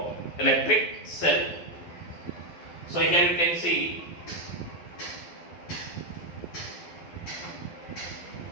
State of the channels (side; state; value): right; late; 12 ms